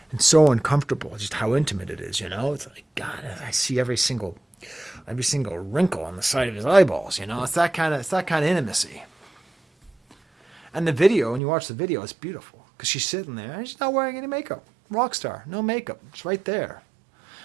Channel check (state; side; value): drops out; left; at 11.4 s